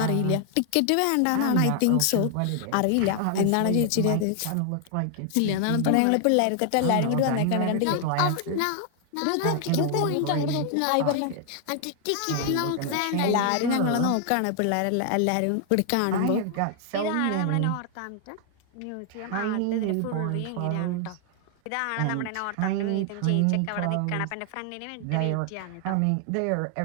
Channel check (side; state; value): both; different; correlation 0.00